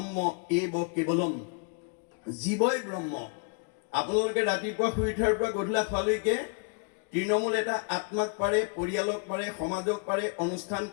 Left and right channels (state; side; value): quieter; right; 38.2 dB